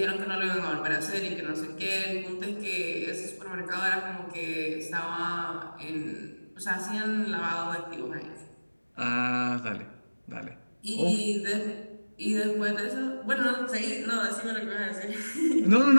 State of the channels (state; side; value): inverted; both; correlation -1.00